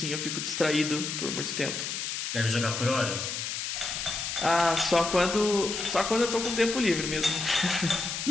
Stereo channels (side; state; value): left; noise; hiss, 4 dB below the sound